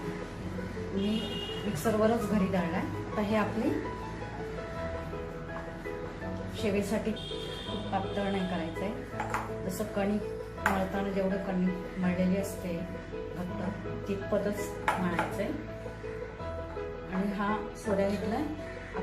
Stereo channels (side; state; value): both; identical; correlation 1.00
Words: मी मिक्सरवरच घरी दळलाय। आता हे आपली शेवेसाठी खूप पातळ नाही करायचंय, जसं कणिक मळताना जेवढं कणिक मळलेली असते घट्ट तितपतच मळायचंय। आणि हा सोऱ्या घेतलाय।